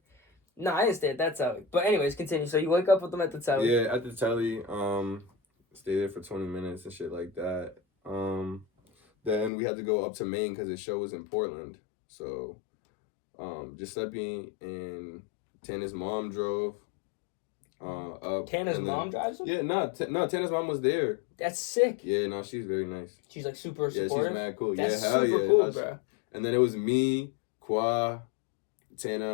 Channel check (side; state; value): right; drops out; at 9.5 s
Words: No, I didn't stay at that telly. But anyways, continue. So you wake up with them at the telly. Yeah, at the telly. Stay there for 20 minutes and shit like that. Then we had to go up to Maine because the show was in Portland. So, Giuseppe and Tana's mom drove up. Tana's mom drives them? Yeah, no, Tana's mom was there. That's sick. Yeah, no, she's very nice. She's like super Yeah, supportive. she's mad cool. That's yeah, hell super yeah. cool, bro. And then it was me, Kwa,